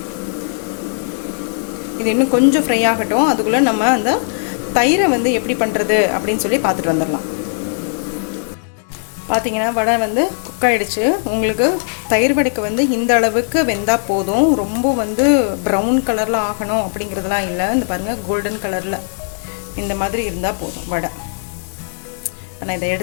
இது இன்னும் கொஞ்சம் ஃப்ரை ஆகட்டும். அதுக்குள்ளே நம்ம அந்த தயிரை வந்து எப்படி பண்ணுறது அப்படின்னு சொல்லி பார்த்துட்டு வந்துடலாம். பார்த்தீங்கன்னா வடை வந்து குக் ஆகிடுச்சு. உங்களுக்கு தயிர் வடைக்கு வந்து இந்த அளவுக்கு வெந்தால் போதும். ரொம்ப வந்து ப்ரௌன் கலரில் ஆகணும் அப்படிங்கிறதுலாம் இல்லை. இந்த பாருங்கள், கோல்டன் கலரில் இந்த மாதிரி இருந்தால் போதும் வடை. நான் இதை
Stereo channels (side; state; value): right; silent; digital silence